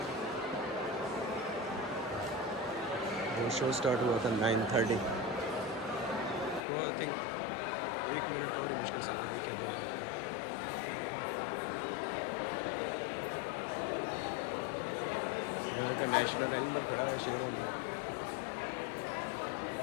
वो शो स्टार्ट हुआ था 9:30, वो आई थिंक 1 मिनट और मुश्किल से हुआ, 1 या 2 मिनट का। यहाँ का नेशनल एनिमल खड़ा है, शेरों में।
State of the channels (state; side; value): drops out; right; at 6.6 s